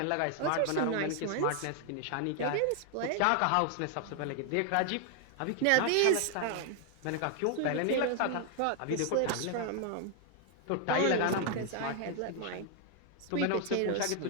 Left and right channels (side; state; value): both; different; correlation 0.00